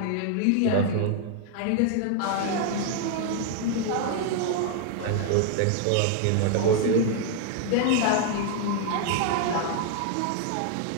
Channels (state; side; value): different; both; correlation 0.00